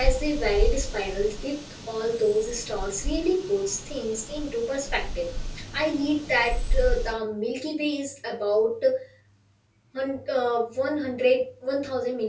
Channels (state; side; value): identical; both; correlation 1.00